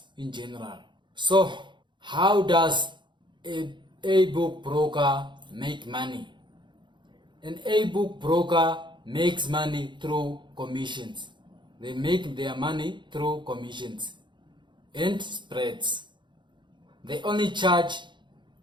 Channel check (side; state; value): left; late; 0.23 ms